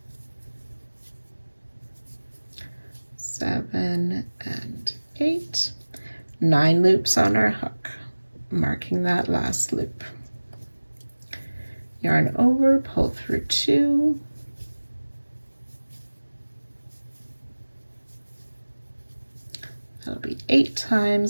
7, and 8. 9 loops on our hook, marking that last loop. Yarn over, pull through 2, that'll be 8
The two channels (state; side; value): inverted; both; correlation -1.00